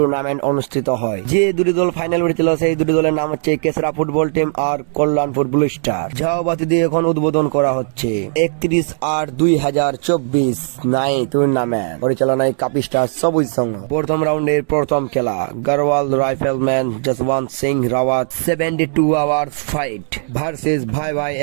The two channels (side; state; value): left; silent; 68 dB below the other